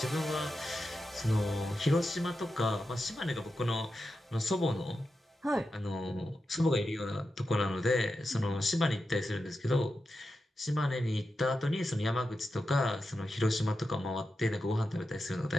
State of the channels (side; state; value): both; normal; correlation 0.89